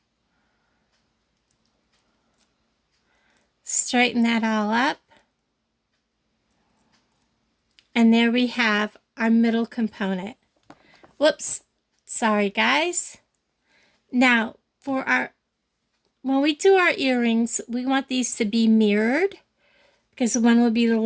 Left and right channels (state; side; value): identical; both; correlation 1.00